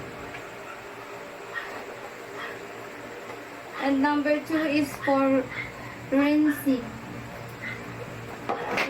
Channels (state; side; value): identical; both; correlation 1.00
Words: And number 2 is for rinsing.